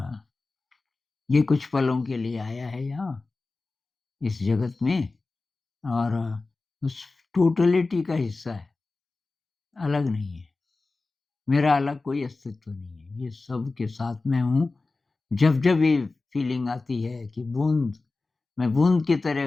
ये कुछ पलों के लिए आया है यहाँ, इस जगत में और उस टोटलिटी का हिस्सा है, अलग नहीं है। मेरा अलग कोई अस्तित्व नहीं है, ये सब के साथ मैं हूँ। जब-जब ये फीलिंग आती है कि मैं बूँद की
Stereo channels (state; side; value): quieter; right; 3.6 dB